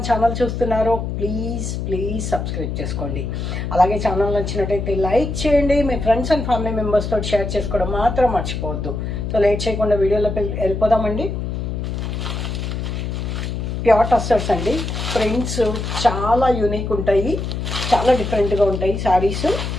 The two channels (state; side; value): noise; left; hum, 4 dB below the sound